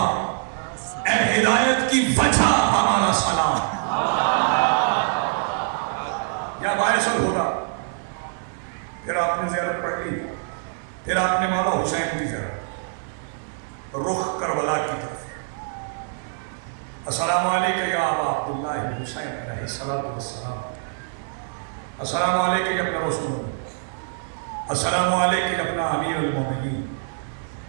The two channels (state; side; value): silent; left; 56 dB below the other